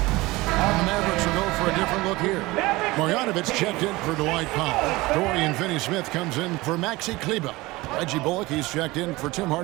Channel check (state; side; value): quieter; left; 20.8 dB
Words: It's checked in for Dwight Powell. Dorian Finney-Smith comes in for Maxi Kleber. Reggie Bullock, he's checked in for Tim